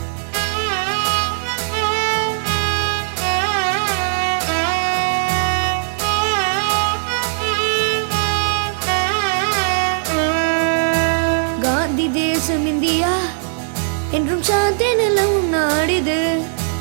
காந்தி தேசம் இந்தியா என்றும் சாந்தி நிலவும் நாடிது.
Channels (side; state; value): left; silent; 62 dB below the other